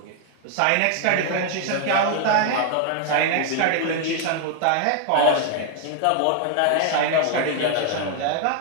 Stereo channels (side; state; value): both; different; correlation 0.00